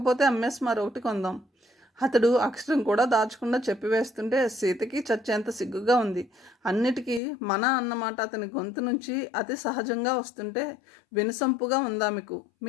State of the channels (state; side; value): drops out; right; at 7.2 s